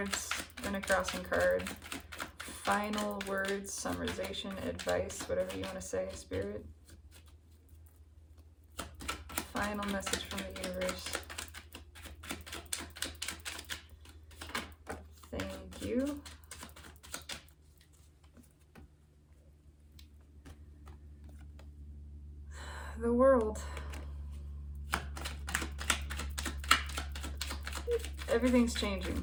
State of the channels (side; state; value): both; identical; correlation 1.00